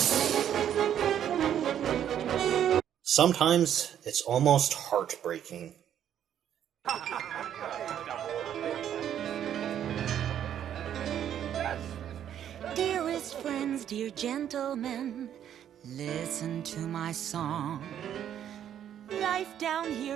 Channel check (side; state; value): left; quieter; 10.0 dB